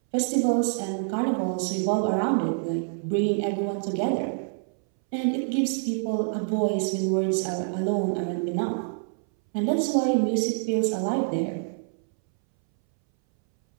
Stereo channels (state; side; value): silent; left; 61 dB below the other